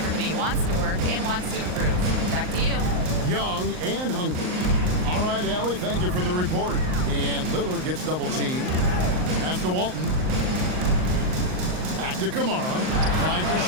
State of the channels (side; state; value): left; late; 38 ms